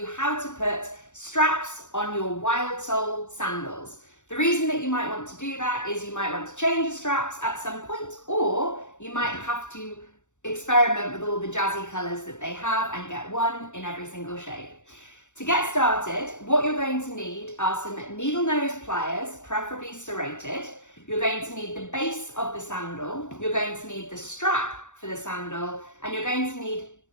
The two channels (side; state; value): right; late; 0.85 ms